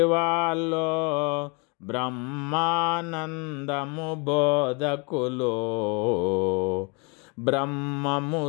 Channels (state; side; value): quieter; right; 32.3 dB